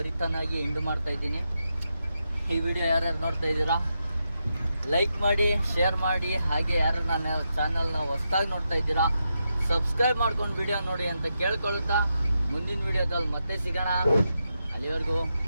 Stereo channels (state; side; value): inverted; both; correlation -0.85